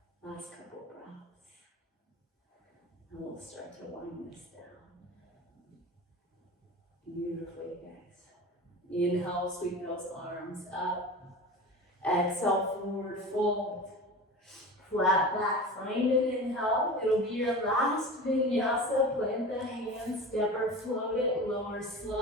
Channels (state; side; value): normal; both; correlation 0.33